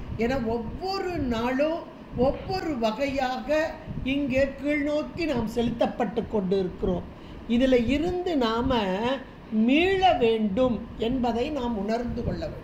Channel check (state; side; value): identical; both; correlation 1.00